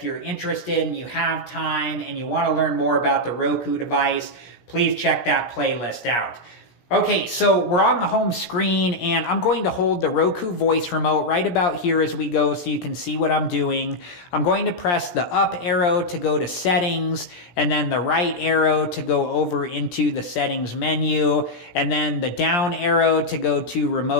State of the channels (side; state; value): right; late; 17 ms